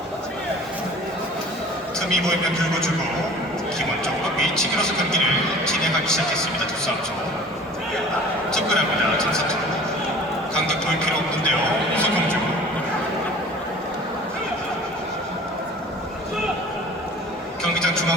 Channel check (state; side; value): normal; both; correlation 0.45